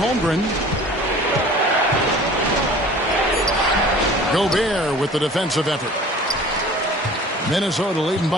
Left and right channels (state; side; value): normal; both; correlation 0.45